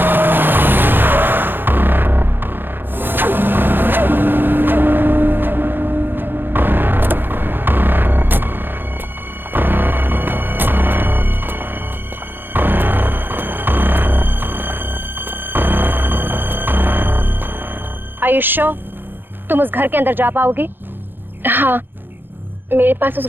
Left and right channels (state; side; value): late; left; 0.098 ms